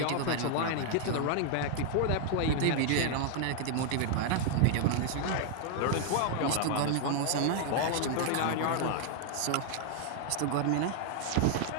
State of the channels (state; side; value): different; both; correlation 0.00